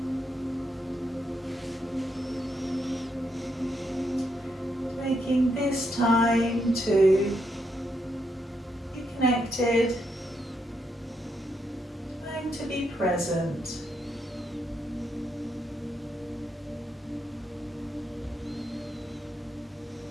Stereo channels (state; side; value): normal; both; correlation 0.79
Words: Taking this time to be connected, time to be present.